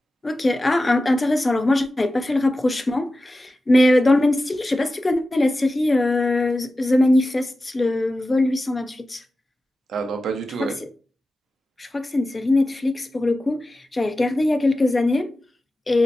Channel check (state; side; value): normal; both; correlation 0.94